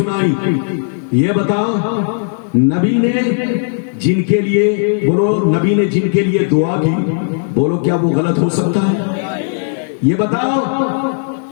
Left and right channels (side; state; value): right; silent; digital silence